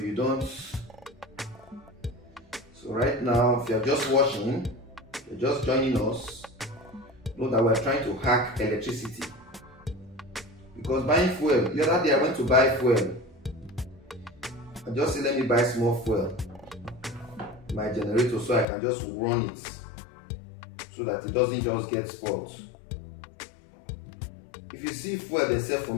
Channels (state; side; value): drops out; right; at 18.7 s